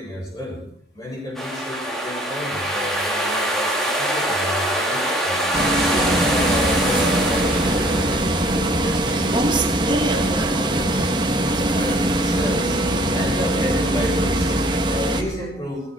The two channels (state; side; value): normal; both; correlation 0.57